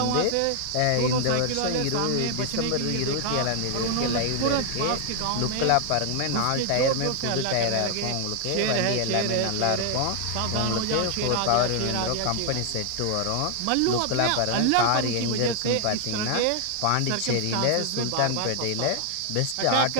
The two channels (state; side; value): different; both; correlation 0.00